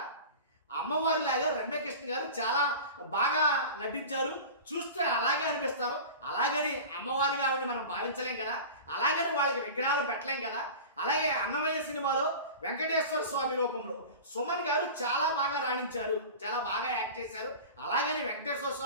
అమ్మవారిలాగా రమ్యకృష్ణ గారు చాలా బాగా నటించారు, చూస్తే అలాగే అనిపిస్తారు, అలాగని అమ్మవారిగా ఆవిడని మనం భావించలేం కదా, అలాగని వాళ్ళకి విగ్రహాలు పెట్టలేం కదా. అలాగే అన్నమయ్య సినిమాలో వెంకటేశ్వర స్వామి రూపంలో సుమన్ గారు చాలా బాగా రాణించారు, చాలా బాగా యాక్ట్ చేశారు, అలాగని వెంకటేశ్వర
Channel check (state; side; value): inverted; both; correlation -0.34